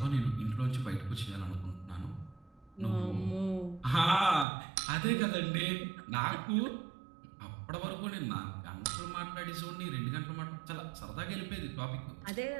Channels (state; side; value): drops out; left; at 4.5 s